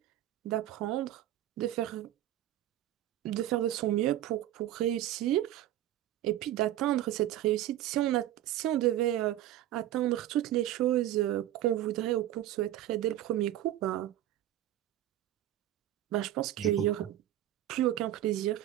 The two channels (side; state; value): left; quieter; 13.2 dB